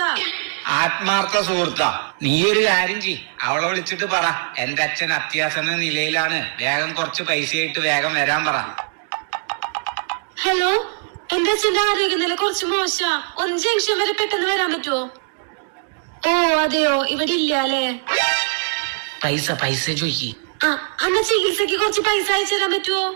ആത്മാർത്ഥ സുഹൃത്താ? നീ ഒരു കാര്യം ചെയ്, അവളെ വിളിച്ചിട്ട് പറ, എന്റെ അച്ഛൻ അത്യാസന്ന നിലയിലാണ്, വേഗം കുറച്ച് പൈസയായിട്ട് വേഗം വരാൻ പറ. ഹലോ, എന്റെ അച്ഛന്റെ ആരോഗ്യനില കുറച്ച് മോശം. 1 ജംഗ്ഷൻ വരെ പെട്ടെന്ന് വരാൻ പറ്റുമോ? ഓ അതെയോ, ഇവിടെ ഇല്ല അല്ലേ? പൈസ ചോദിക്ക്. അന്ന ചികിത്സക്ക് കുറച്ച് പൈസ അയച്ചു തരാൻ പറ്റുമോ?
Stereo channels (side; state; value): left; silent; digital silence